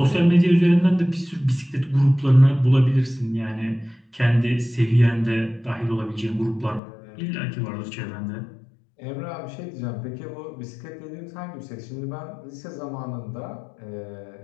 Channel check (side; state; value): right; drops out; at 6.8 s